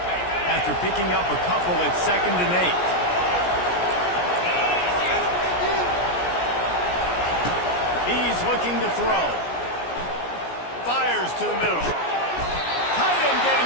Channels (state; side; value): late; right; 17 ms